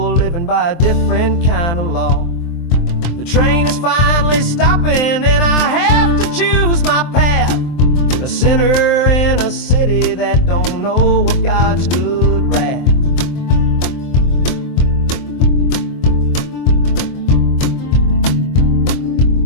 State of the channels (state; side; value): late; right; 23 ms